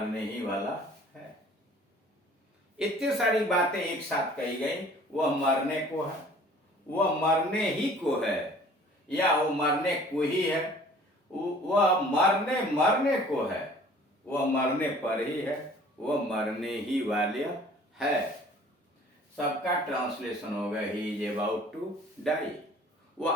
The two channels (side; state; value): both; normal; correlation 0.51